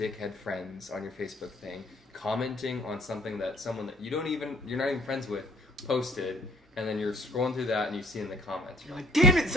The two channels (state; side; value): normal; both; correlation 0.59